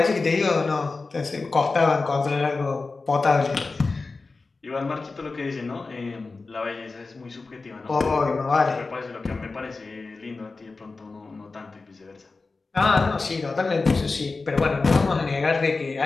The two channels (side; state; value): right; quieter; 3.9 dB